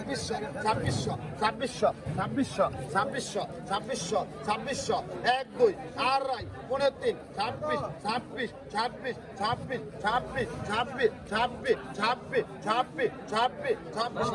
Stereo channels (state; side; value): identical; both; correlation 1.00